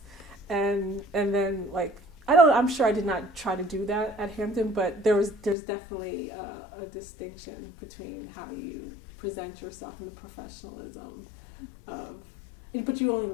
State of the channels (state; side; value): drops out; right; at 5.6 s